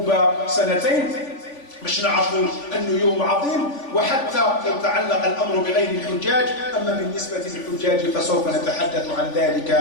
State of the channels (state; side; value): late; right; 3.5 ms